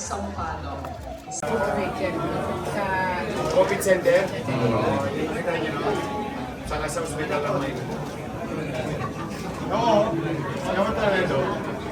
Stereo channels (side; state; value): both; identical; correlation 1.00